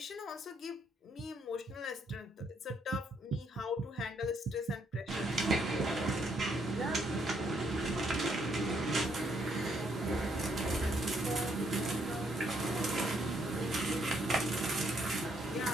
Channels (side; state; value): both; normal; correlation 0.72